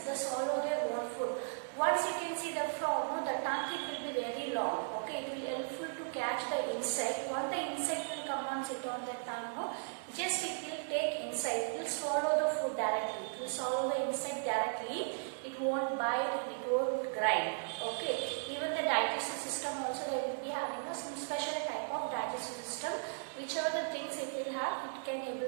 that swallow their own food. Once you can see the frog, no, the tongue it will be very long. Okay, it will helpful to catch the insect. Once the insect will come and sit on the tongue, no, just it will take inside. It will swallow the food directly. It will swallow the insect directly. It won't bite and it won't grind. Okay, even the digestive system also they will be having some special type of digestive system. Whichever the things it will have, it can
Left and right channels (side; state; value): left; silent; digital silence